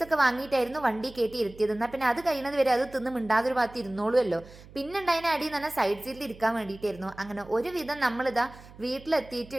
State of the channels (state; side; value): noise; right; hum, 20 dB below the sound